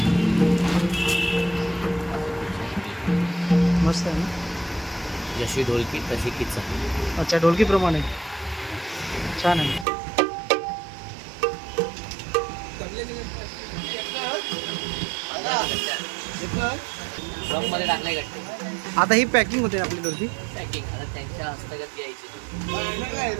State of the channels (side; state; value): left; drops out; at 9.9 s